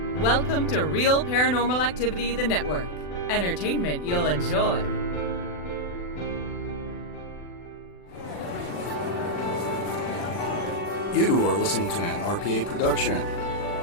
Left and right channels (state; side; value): late; right; 40 ms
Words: Welcome to Real Paranormal Activity, the network. Entertainment you'll enjoy. You are listening to an RPA production